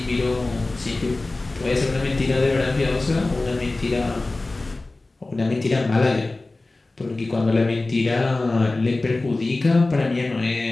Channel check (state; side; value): quieter; right; 3.1 dB